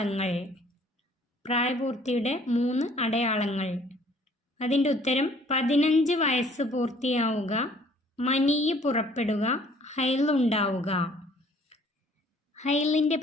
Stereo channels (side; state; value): both; normal; correlation 0.58